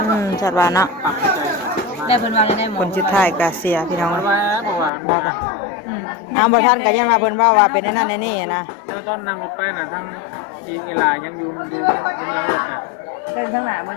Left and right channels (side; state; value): right; drops out; at 4.9 s